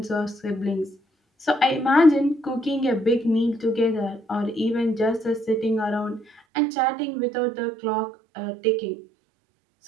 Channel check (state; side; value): drops out; left; at 6.4 s